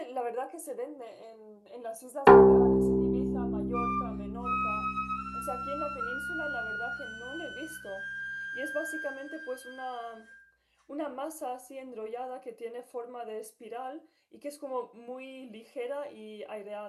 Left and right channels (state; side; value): identical; both; correlation 1.00